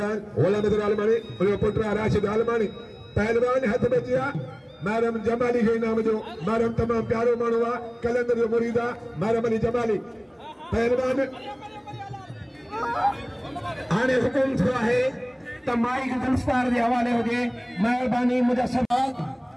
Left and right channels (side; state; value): both; identical; correlation 1.00